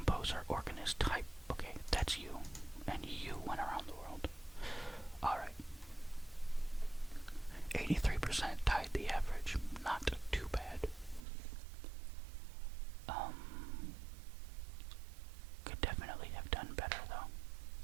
organist type. Okay, that's you. And you went around the world. Alright. 83% tied the average. Not too bad. Could definitely have done better, though.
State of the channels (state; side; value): drops out; left; at 11.2 s